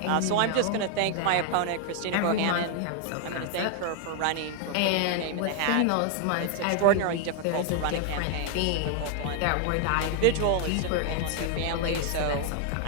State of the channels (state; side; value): different; both; correlation 0.00